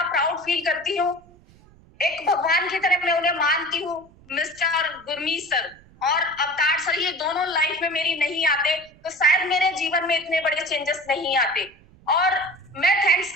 प्राउड फील करती हूँ, एक भगवान की तरह मैं उन्हें मानती हूँ, मिस्टर गुरमीत सर और अवतार सर। ये दोनों लाइफ में मेरी नहीं आते तो शायद मेरे जीवन में इतने बड़े चेंजेस नहीं आते। और मैं थैंक्स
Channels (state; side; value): noise; right; rumble, 26 dB below the sound